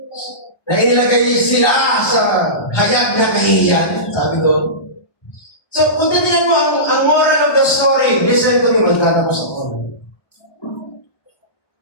na inilagay sila sa hayag na kahihiyan, sabi ko. So, kung titignan mo ang moral of the story, listen to me, magtatapos ako.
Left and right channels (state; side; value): late; right; 1.2 ms